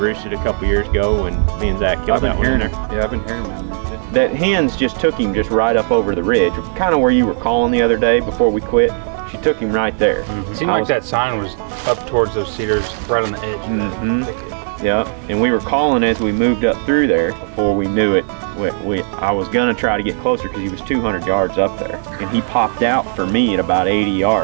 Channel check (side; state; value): left; silent; digital silence